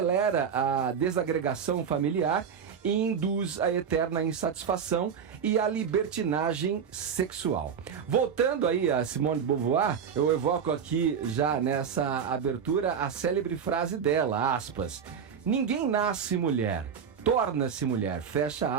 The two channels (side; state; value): left; quieter; 7.2 dB